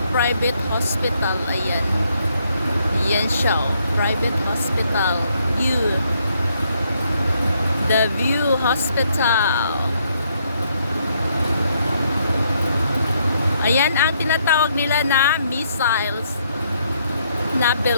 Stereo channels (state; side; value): inverted; both; correlation -0.73